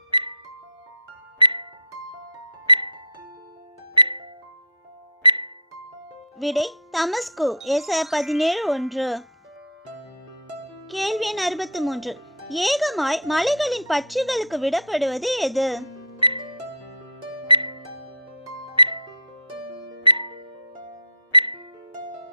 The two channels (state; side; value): normal; both; correlation -0.20